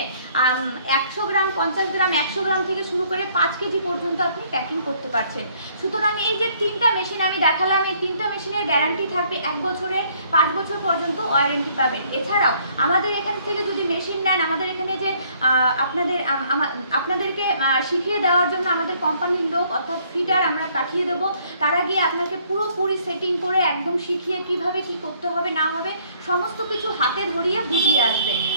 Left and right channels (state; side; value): inverted; both; correlation -0.63